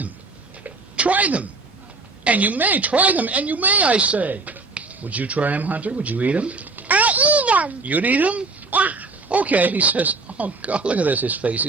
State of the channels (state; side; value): quieter; left; 3.8 dB